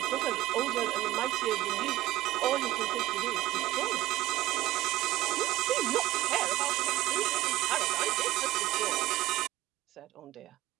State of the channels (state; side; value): quieter; left; 16.1 dB